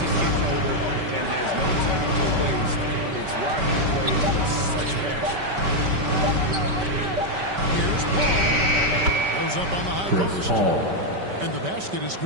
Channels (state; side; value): late; left; 5.2 ms